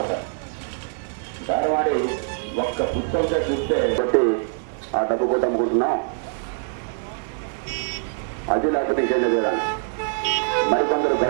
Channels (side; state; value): left; silent; 63 dB below the other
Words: బేరం ఆడి ఒక్క పుస్తకంతో చూస్తే చెప్పి ఆ డబ్బు పోతే అమ్ముకుంటున్నా, అది లేకపోతే ఇంకేం చేయాలి. మరికొందరు